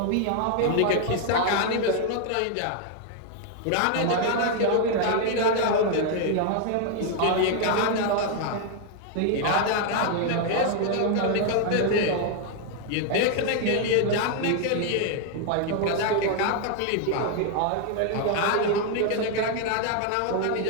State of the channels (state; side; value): different; both; correlation 0.00